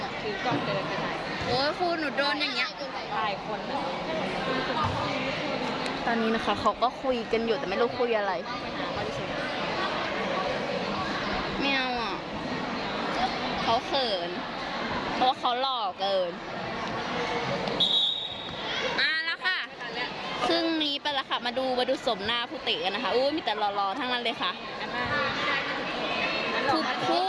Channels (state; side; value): identical; both; correlation 1.00